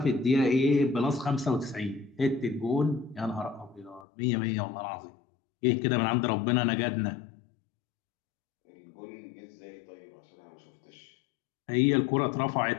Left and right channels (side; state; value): right; drops out; at 4.0 s